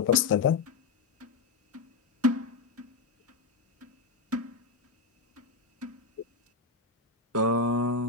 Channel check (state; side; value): quieter; right; 4.2 dB